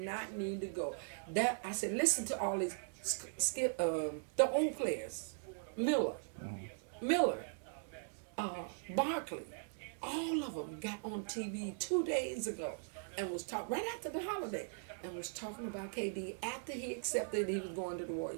need to go. I said, listen to all these the old players. Miller, Barkley. All of them got on TV 2 days ago and was talking right after the holiday and was talking about KD after he accepted he was going to the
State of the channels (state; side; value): silent; left; digital silence